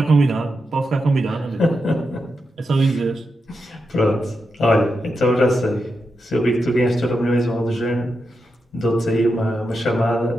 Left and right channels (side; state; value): both; normal; correlation 0.87